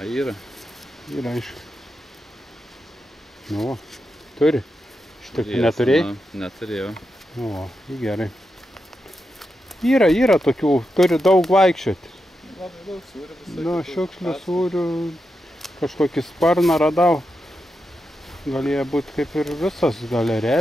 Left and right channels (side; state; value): both; normal; correlation 0.87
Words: yra. Yra aišku. Nu, turi. Šitokių neturėjai? Neturėjau. O, gerai. Yra tokių, turi daug vaikščioti. Labai daug sūrių. Nu, šiukšlių sūrių, kažkokį sparną radau. Galėjo būti kaip ir visas, gal